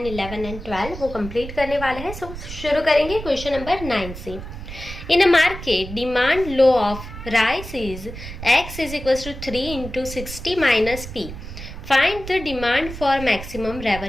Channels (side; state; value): right; noise; rumble, 11 dB below the sound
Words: 11 एंड 12 वो कंप्लीट करने वाले हैं। सो शुरू करेंगे क्वेश्चन नंबर 9 से। In a market demand law of rice is x is equal to 3 into 60 minus p। Find the demand for maximum